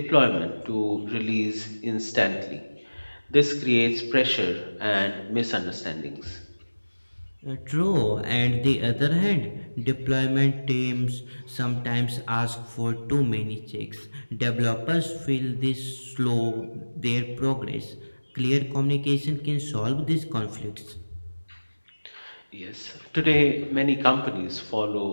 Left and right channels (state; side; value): inverted; both; correlation -1.00